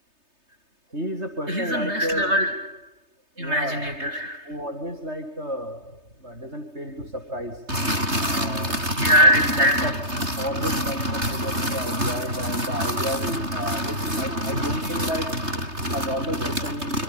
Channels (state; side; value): late; left; 3.3 ms